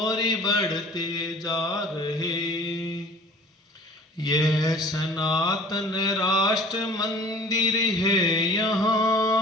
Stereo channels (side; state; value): both; normal; correlation 0.46